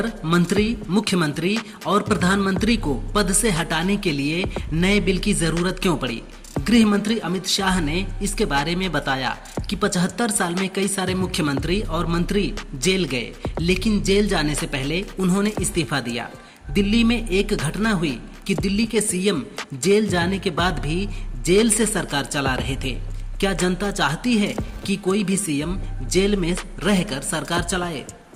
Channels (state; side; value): identical; both; correlation 1.00